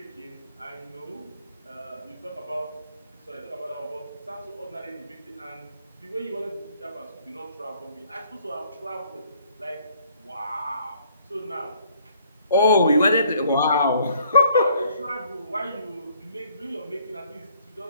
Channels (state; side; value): inverted; both; correlation -0.63